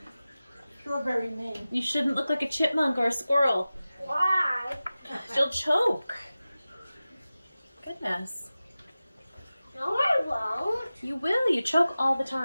Strawberry man. You shouldn't look like a chipmunk or a squirrel. Why? You'll choke. Goodness. No, I won't. You will. You choke all the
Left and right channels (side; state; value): both; inverted; correlation -0.96